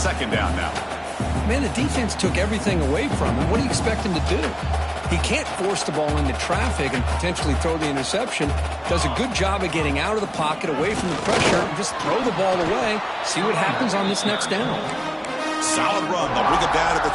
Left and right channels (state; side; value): identical; both; correlation 1.00